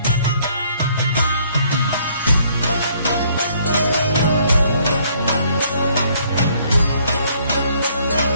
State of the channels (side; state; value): both; inverted; correlation -0.64